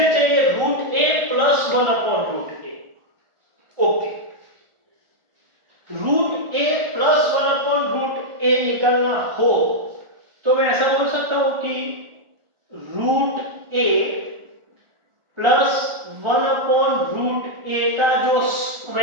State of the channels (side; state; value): left; late; 1.4 ms